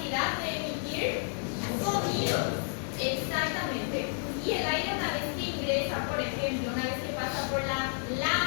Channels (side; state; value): right; silent; 57 dB below the other